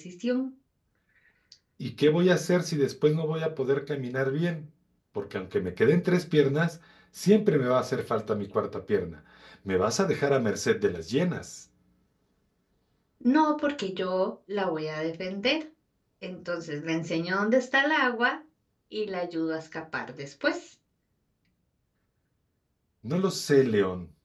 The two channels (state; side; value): identical; both; correlation 1.00